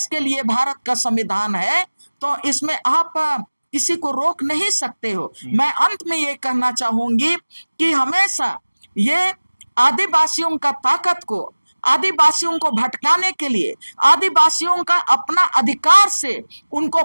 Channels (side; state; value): both; inverted; correlation -1.00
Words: के लिए भारत का संविधान है, तो इसमें आप किसी को रोक नहीं सकते हो। मैं अंत में ये कहना चाहूंगी कि हमेशा ये आदिवासियों का ताकत को, आदिवासियों को भटकाने के लिए, आदिवासियों का अपना अधिकार से उनको